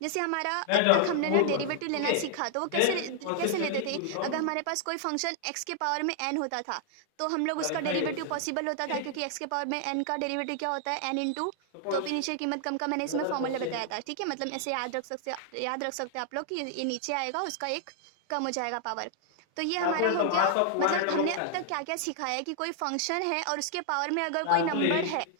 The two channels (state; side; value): different; both; correlation 0.00